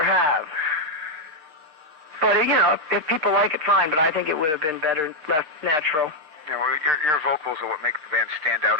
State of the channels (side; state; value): left; late; 6.6 ms